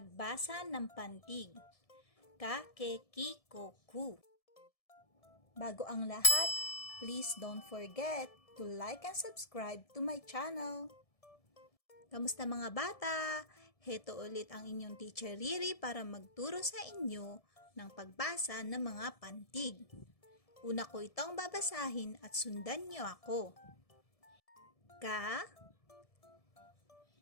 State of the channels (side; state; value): right; late; 1.7 ms